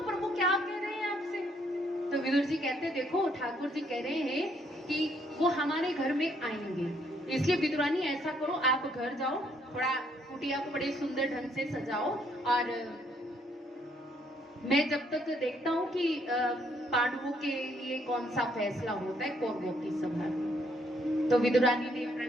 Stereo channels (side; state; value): both; normal; correlation 0.69